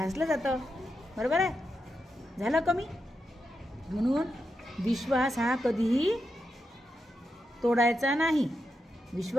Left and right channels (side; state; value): both; normal; correlation 0.86